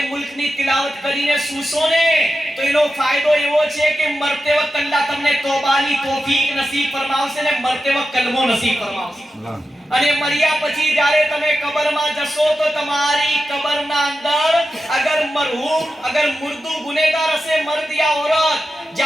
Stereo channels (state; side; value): normal; both; correlation 0.91